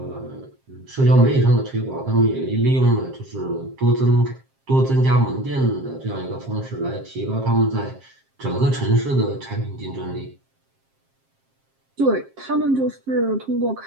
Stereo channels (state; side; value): late; left; 7.5 ms